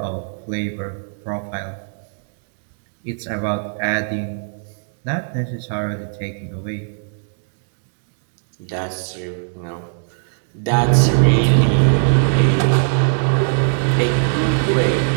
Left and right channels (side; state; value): left; silent; digital silence